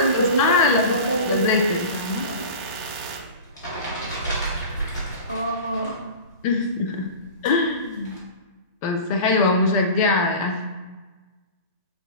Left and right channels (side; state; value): both; inverted; correlation -0.34